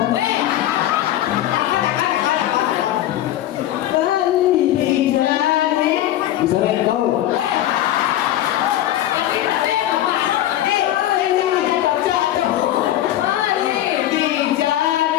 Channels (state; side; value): quieter; right; 13.2 dB